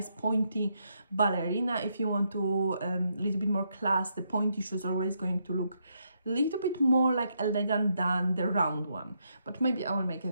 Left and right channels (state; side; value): inverted; both; correlation -0.78